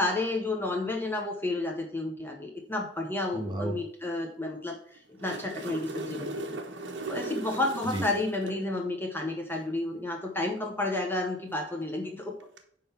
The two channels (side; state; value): both; normal; correlation 0.47